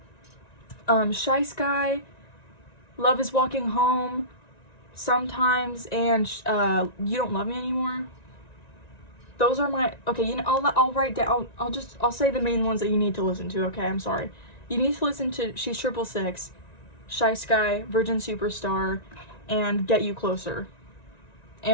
Shy Sky. Love Is Walking Home, Sometimes, and You Don't Love Me Anymore. Those are my, okay, you know, I'll write down, I'll say the main ones that you need to listen to, okay? I'm sorry. You need to listen to She's 666, Shy Sky, Virgin Superstar, and Get You Closer,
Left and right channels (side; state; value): right; late; 1.9 ms